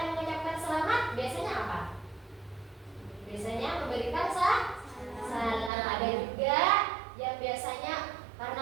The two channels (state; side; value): drops out; left; at 5.7 s